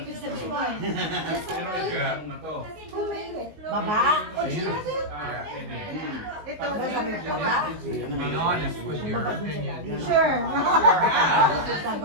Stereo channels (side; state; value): left; late; 19 ms